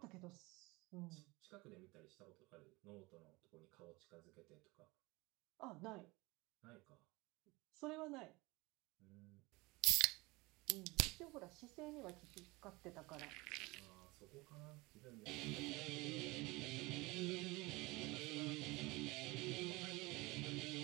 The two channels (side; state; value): left; quieter; 23.4 dB